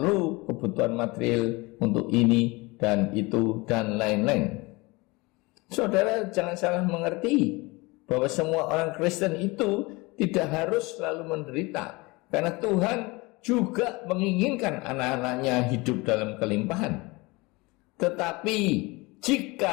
kebutuhan material untuk ini dan itu dan lain-lain. Saudara jangan salah mengerti bahwa semua orang Kristen itu tidak harus selalu menderita, karena Tuhan juga menginginkan anak-anaknya hidup dalam kelimpahan. Tetapi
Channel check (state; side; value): quieter; right; 24.4 dB